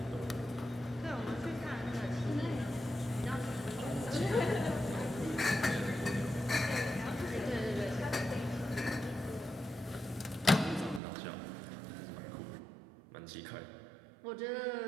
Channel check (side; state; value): left; drops out; at 11.0 s